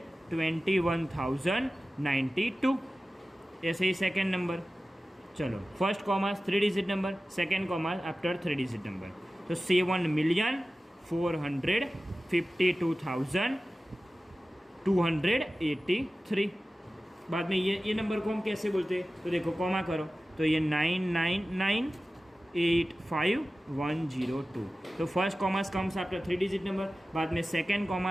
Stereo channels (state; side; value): normal; both; correlation 0.95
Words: ऐसे ही सेकेंड नंबर, चलो first commas 3 digit number, second commas after 3 digit number, तो 7,452,283। बाद में ये नंबर को हम कैसे बोलते हैं, तो देखो कॉमा करो, तो ये 999,85102, तो first commas comes after 3 digit number, बाद में second